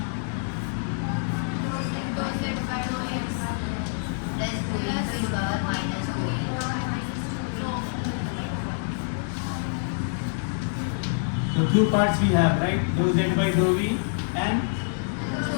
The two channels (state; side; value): silent; right; digital silence